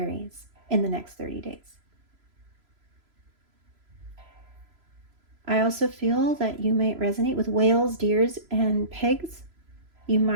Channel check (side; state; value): left; late; 3.0 ms